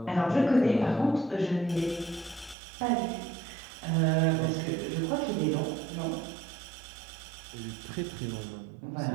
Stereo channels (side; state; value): left; drops out; at 2.6 s